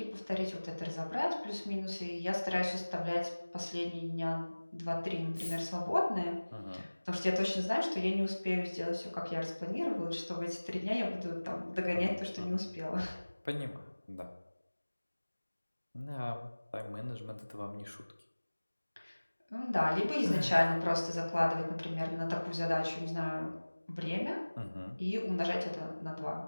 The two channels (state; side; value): inverted; both; correlation -1.00